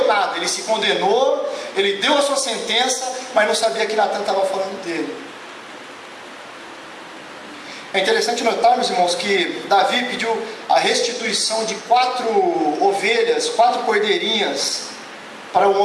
nada, ele se condenou, ele deu a sua sentença, mas não sabia que Natan estava falando dele. É interessante notarmos, irmãos, que Davi pediu a restituição de 4 ovelhas, 4 cordeirinhas para o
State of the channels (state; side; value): identical; both; correlation 1.00